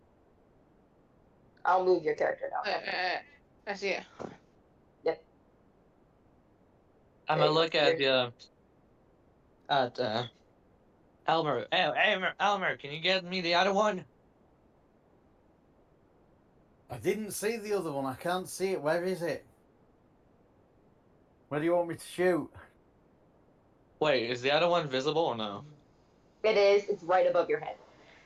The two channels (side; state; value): both; identical; correlation 1.00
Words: I'll move your character down. I see it. Yep. I'm There gonna you go. look at the at Elmer, can you get me the other one? I didn't see the other one. I can't see it. Where is it? Where do you want me to shoot? Wait, is the other one visible or no? It is. It's right above your head.